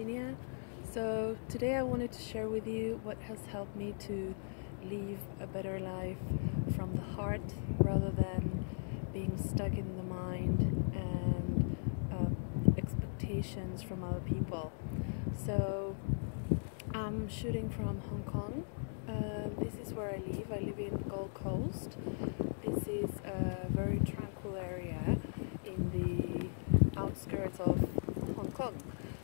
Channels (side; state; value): right; silent; digital silence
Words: So today I wanted to share with you what has helped me to live a better life from the heart rather than being stuck in the mind and expectations from other people. So I'm shooting from Hong Kong. This is where I live. I live in Gold Coast. This is a very tranquil area in the outskirts of Hong Kong.